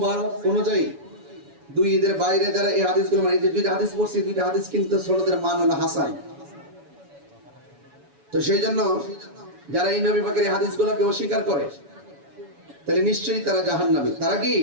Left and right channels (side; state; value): left; late; 7.1 ms